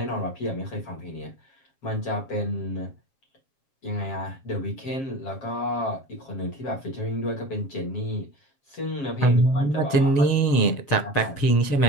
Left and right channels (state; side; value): late; right; 7.4 ms